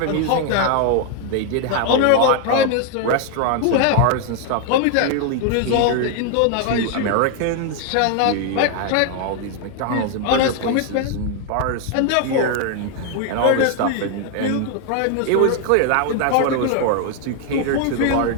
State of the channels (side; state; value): both; different; correlation 0.00